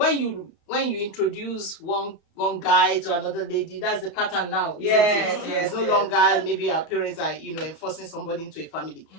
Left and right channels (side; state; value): right; late; 32 ms